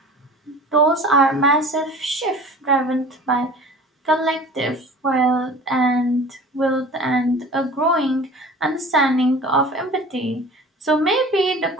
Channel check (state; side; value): normal; both; correlation 0.41